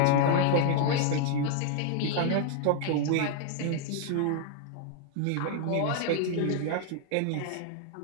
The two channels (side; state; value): both; different; correlation 0.00